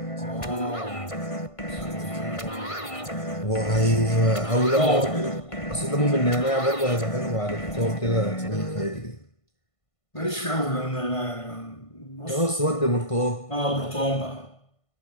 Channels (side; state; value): right; late; 1.5 ms